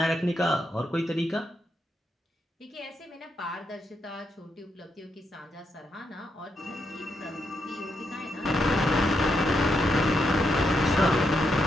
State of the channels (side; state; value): both; normal; correlation 0.81